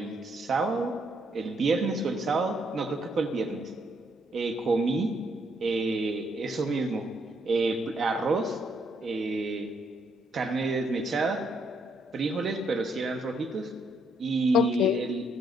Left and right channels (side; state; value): both; normal; correlation 0.73